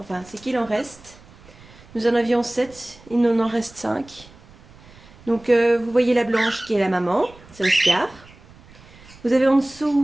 c'est qu'il en reste. Nous en avions 7, il nous en reste 5. Donc vous voyez la blanche qui est la maman, c'est Oscar. Vous avez en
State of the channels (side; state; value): right; noise; rumble, 23 dB below the sound